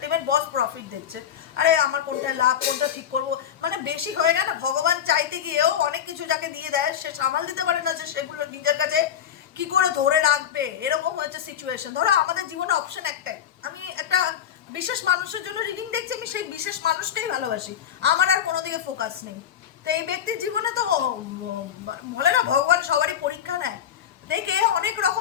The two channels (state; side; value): quieter; right; 9.4 dB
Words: বস প্রফিট দেখছে। আরে আমার কোনটা লাভ, কোনটা ঠিক করব, মানে বেশি হয়ে গেল। ভগবান চাইতে গিয়েও অনেক কিছু যাকে দিয়ে দেয় সে সামাল দিতে পারে না, যে সেগুলো নিজের কাছে কি করে ধরে রাখবে, এরকম হচ্ছে সিচুয়েশন। ধরো আমাদের জীবনে অপশন একটাই, আমি একটা বিশেষ মানুষের জন্য রিডিং দেখছি, আমি সেই বিশেষ মানুষকেই ভালোবাসি, আমার আর কোনো দিকে ফোকাস নেই। তো এই ব্যক্তির জীবনে তো বলে না ভগবান সবারই পরীক্ষা নেয়, দেখে অনেক